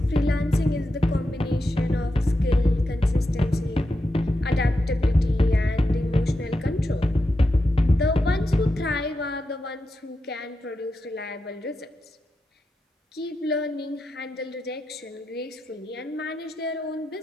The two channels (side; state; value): both; normal; correlation 0.88